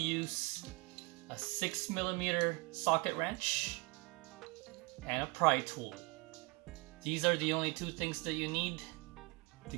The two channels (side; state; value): left; quieter; 27.6 dB